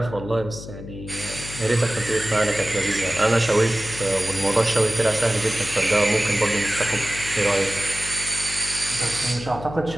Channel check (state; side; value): noise; left; hum, 12 dB below the sound